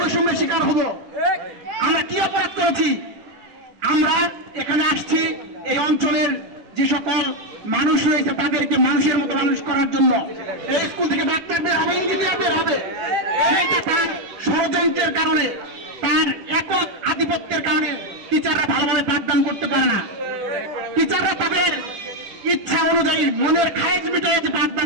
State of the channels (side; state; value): left; late; 10 ms